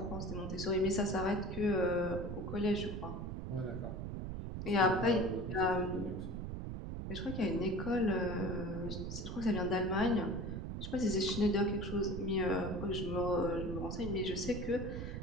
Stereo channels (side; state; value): right; noise; rumble, 5 dB below the sound